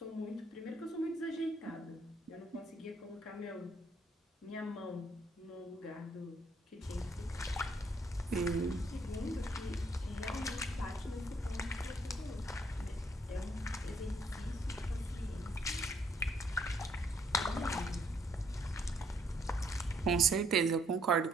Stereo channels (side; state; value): both; normal; correlation 0.68